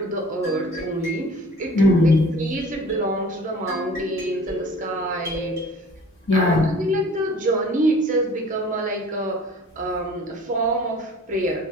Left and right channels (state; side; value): normal; both; correlation 0.47